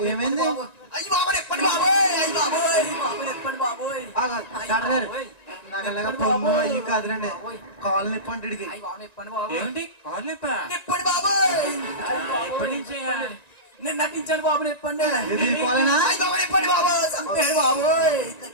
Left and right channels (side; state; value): right; late; 1.9 ms